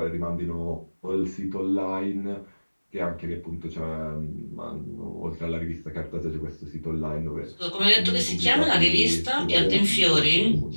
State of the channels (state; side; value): inverted; both; correlation -1.00